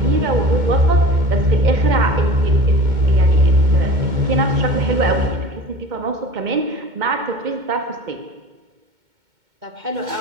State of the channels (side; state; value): left; late; 2.2 ms